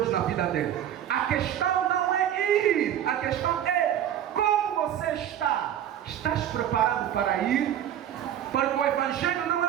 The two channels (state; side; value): quieter; left; 10.6 dB